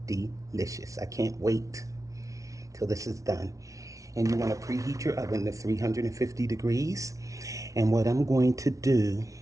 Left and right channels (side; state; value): left; late; 0.16 ms